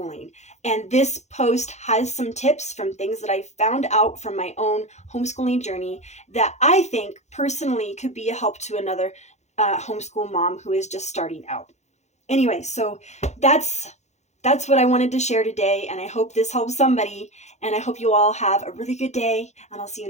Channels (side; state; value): right; late; 0.33 ms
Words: And this post has some tips from things that I found out from my own homeschooling journey that I think personally could be a help to another homeschool mom who is just starting out. Anyway, so that's what I wanted to share today, and I hope this helps somebody, and I hope you all have a really good day, and I'll see